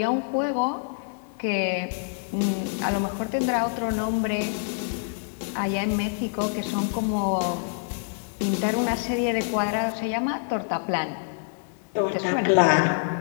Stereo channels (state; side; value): silent; right; 61 dB below the other